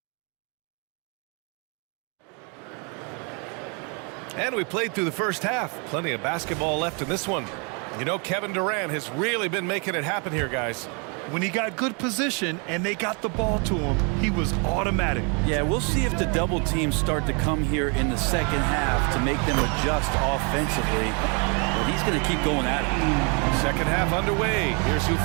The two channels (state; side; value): quieter; left; 34.6 dB